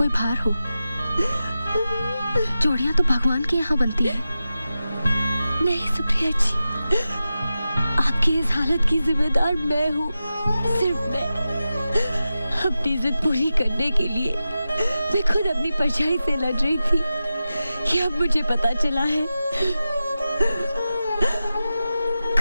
भार हो। जोड़ियां तो भगवान के यहाँ बनती है। नहीं सुप्रिया जी, आपकी इस हालत की जिम्मेदार मैं हूँ, सिर्फ मैं। अपनी जिद पूरी करने के लिए मैं खुद अपनी परछाई से लड़ रही थी, ये अब मुझे पता चला है।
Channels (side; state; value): both; inverted; correlation -0.93